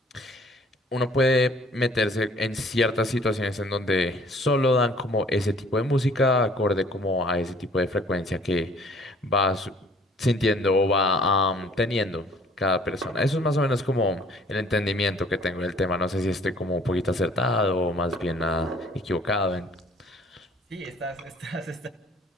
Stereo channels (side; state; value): both; normal; correlation 0.56